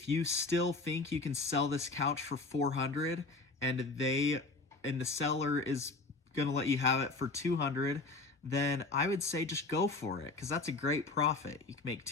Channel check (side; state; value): right; quieter; 3.5 dB